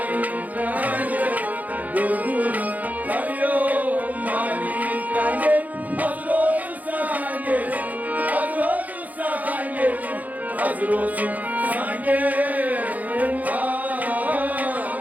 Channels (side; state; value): left; late; 0.078 ms